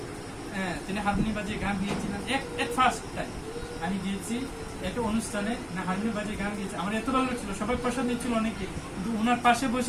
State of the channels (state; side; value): identical; both; correlation 1.00